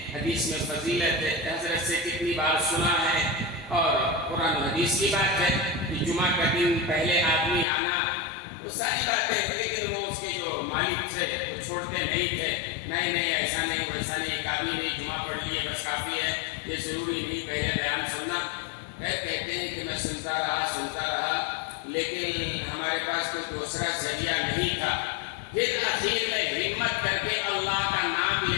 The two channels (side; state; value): right; drops out; at 7.7 s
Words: حدیث میں فضیلت ہے، حضرت سے کتنی بار سنا ہے، اور قرآن و حدیث کی بات ہے کہ جمعہ کا دن پہلے آدمی آنا، وہ ساری باتیں، لیکن وہ اس کے جو مالک تھے وہ چھوڑتے نہیں تھے، نہیں ایسا نہیں ویسا نہیں، ایک آدمی نہیں جمعہ پڑھ لیے بس کافی ہے، یہ ضروری نہیں پہلے بیان سننا۔ کہتے ہیں کہ میں سنتا رہا، لیکن ہمارے پاس کوئی دوسرا ذریعہ نہیں تھا۔ پھر اخیر میں ہمت کر کے اللہ کا نام